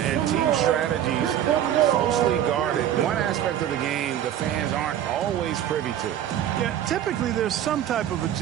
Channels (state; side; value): quieter; left; 10.8 dB